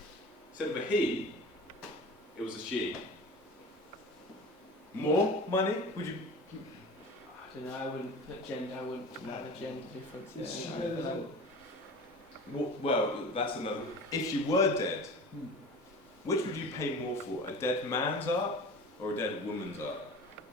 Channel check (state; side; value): normal; both; correlation 0.37